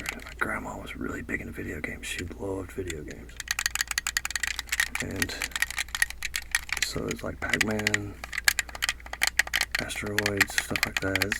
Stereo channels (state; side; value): identical; both; correlation 1.00